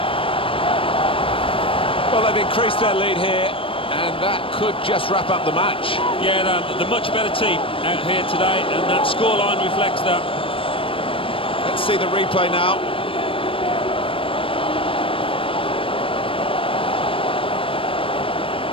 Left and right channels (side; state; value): right; late; 0.26 ms